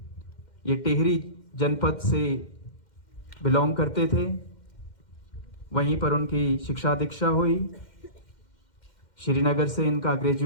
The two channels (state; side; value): late; right; 2.1 ms